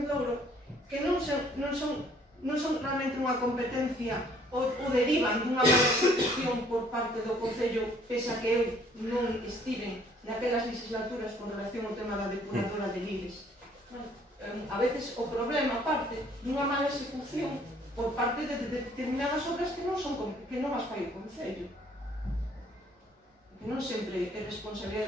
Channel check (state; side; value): normal; both; correlation 0.60